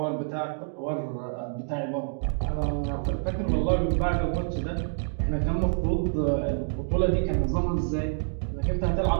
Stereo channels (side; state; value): left; silent; digital silence